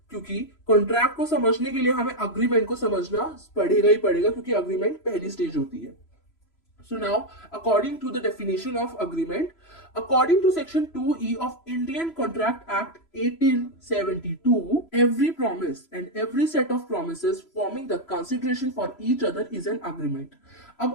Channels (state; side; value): late; right; 3.0 ms